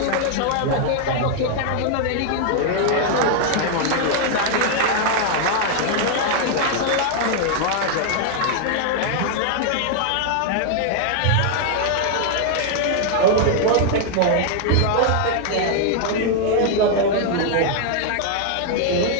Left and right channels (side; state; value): both; different; correlation 0.00